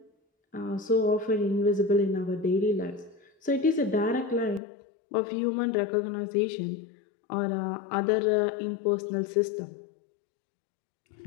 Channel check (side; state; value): right; drops out; at 4.6 s